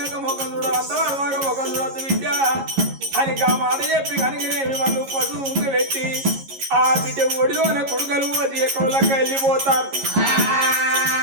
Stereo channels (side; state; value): left; late; 11 ms